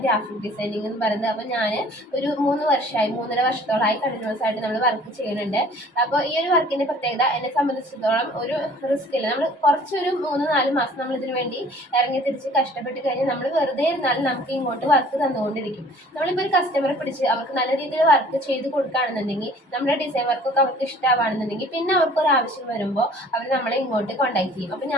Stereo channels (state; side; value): normal; both; correlation 0.51